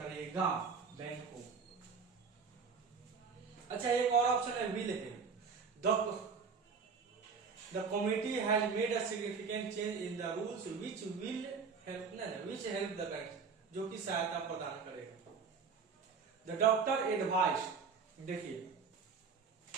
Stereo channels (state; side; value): quieter; left; 5.5 dB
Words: बैंक को। अच्छा एक और ऑप्शन है विल है, the committee has made a significant change in the rules which will help, which help the bank, जो कि सहायता प्रदान करेगा। द डॉक्टर एडवाइस, देखिए